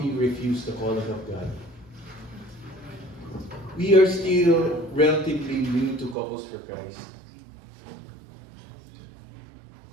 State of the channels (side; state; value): left; drops out; at 6.2 s